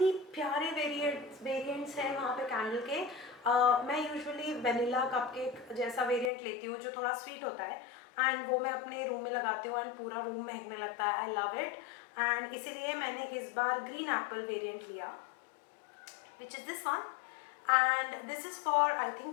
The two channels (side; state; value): right; drops out; at 6.3 s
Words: प्यारे variants हैं वहाँ पे कैंडल के. मैं यूजुअली वेनिला कपकेक जैसा वेरिएंट लेती हूँ जो थोड़ा स्वीट होता है एंड वो मैं अपने रूम में लगाती हूँ एंड पूरा रूम महकने लगता है. I love it. एंड इसीलिए मैंने इस बार ग्रीन एप्पल वेरिएंट लिया, which is this one. And this is for I